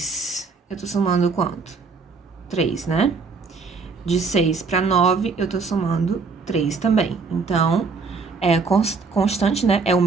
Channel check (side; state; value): left; quieter; 4.6 dB